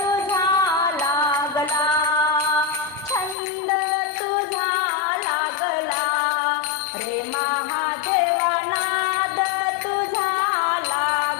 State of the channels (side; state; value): right; drops out; at 3.4 s